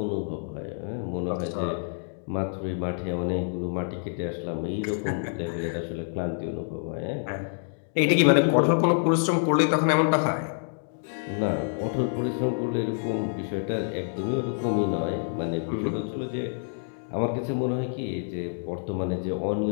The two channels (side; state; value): right; silent; digital silence